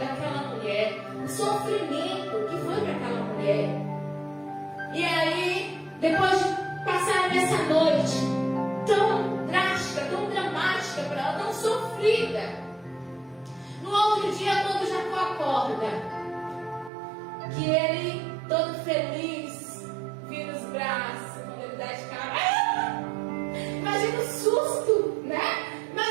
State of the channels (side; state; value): left; drops out; at 16.9 s